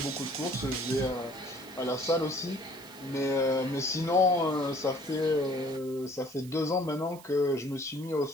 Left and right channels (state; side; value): noise; right; hiss, 20 dB below the sound